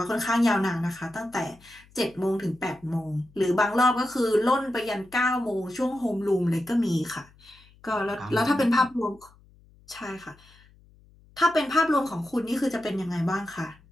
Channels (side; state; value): left; noise; hum, 28 dB below the sound